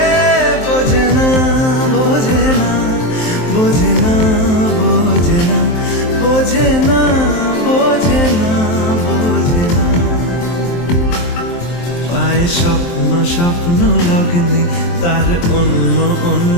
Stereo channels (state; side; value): late; right; 23 ms